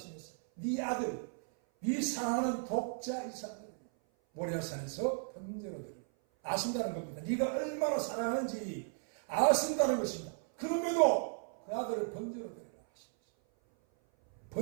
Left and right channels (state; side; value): silent; left; 54 dB below the other